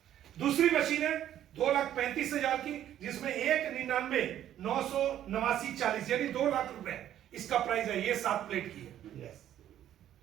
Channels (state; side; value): quieter; left; 11.4 dB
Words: दूसरी मशीन है 2,35,000 की, जिसमें 1,99,989,40 यानी 2 लाख रुपए इसका प्राइस है। ये 7 प्लेट की है। Yes.